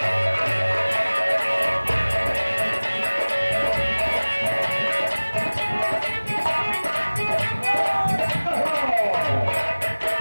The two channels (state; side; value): inverted; both; correlation -1.00